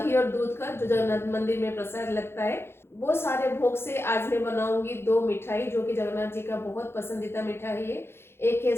और दूध का, जो जगन्नाथ मंदिर में प्रसाद लगता है। वो सारे भोग से आज मैं बनाऊंगी 2 मिठाई जो कि जगन्नाथ जी का बहुत पसंदीदा मिठाई है। एक है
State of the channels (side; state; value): right; late; 0.12 ms